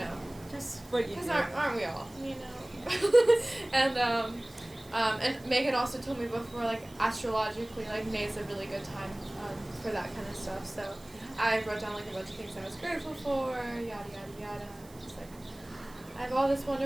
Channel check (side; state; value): right; noise; hiss, 24 dB below the sound